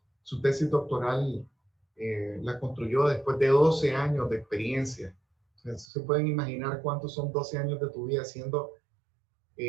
Su tesis doctoral la construyó después de 12 años de experiencia. Entonces, se pueden imaginar cuántos son 12 años de tu vida haciendo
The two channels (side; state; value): left; drops out; at 5.9 s